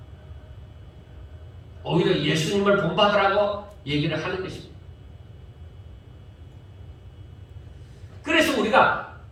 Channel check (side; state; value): both; identical; correlation 1.00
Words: 오히려 예수님을 본받으라고 얘기를 하는 것입니다. 그래서 우리가